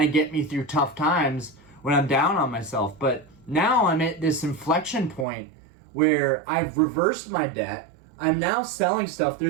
of get me through tough times when I'm down on myself. But now I'm at this inflection point where I've reversed my debt. I'm now selling stuff.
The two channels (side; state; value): left; drops out; at 5.2 s